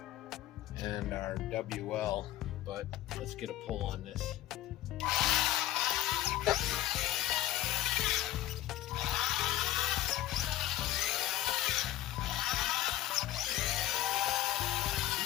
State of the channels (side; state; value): right; quieter; 14.0 dB